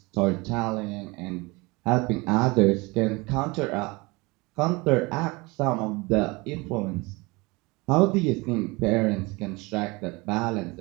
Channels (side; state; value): left; quieter; 24.8 dB